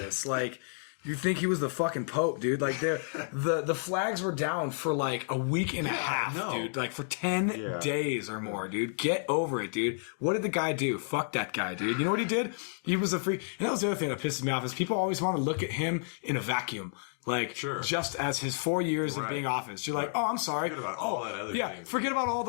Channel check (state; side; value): silent; right; digital silence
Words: Like, you think he was the fucking Pope, dude. Like, the flags were down for like a week and a half, dude. Like, for 10 days or more, dude. Get over it, dude. What did the guy do? Fuck that guy, dude. You know what he did? He was a freak. And that was the other thing that pisses me off is people always want to look at him in a vacuum. Like, just as his 4 years of being office. You're like, oh, I'm sorry. Forget about all that other things. Forget about all